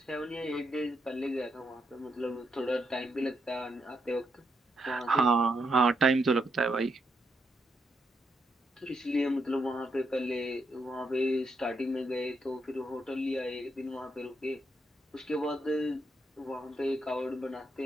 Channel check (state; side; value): normal; both; correlation 0.80